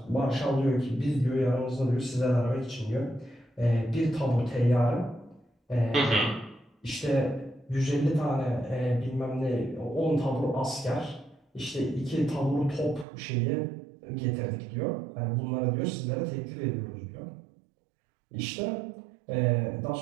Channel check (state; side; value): drops out; left; at 13.1 s